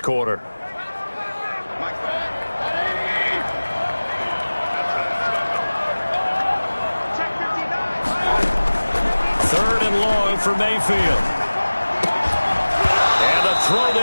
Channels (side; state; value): both; inverted; correlation -1.00